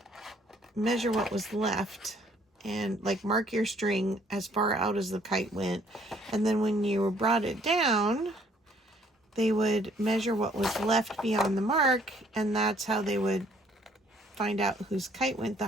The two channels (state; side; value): normal; both; correlation 0.62